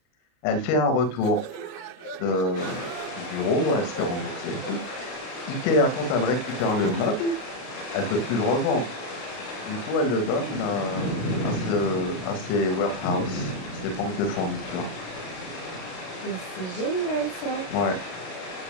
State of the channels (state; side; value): late; right; 33 ms